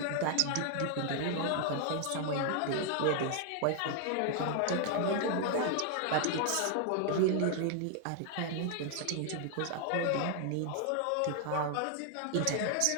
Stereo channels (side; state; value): both; different; correlation 0.00